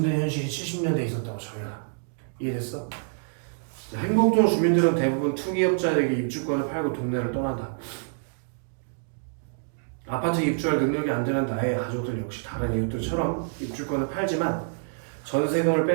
현실이 70년대에 있었다고 저희가 이해됐어? 행복동 주민들은 대부분 투기업자에게 입주권을 팔고 동네를 떠난다. 아파트 입주할 능력이 안 되는 나의 가족들 역시 다른 이웃들처럼 입주권을 팔지만 전세금을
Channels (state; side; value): silent; left; digital silence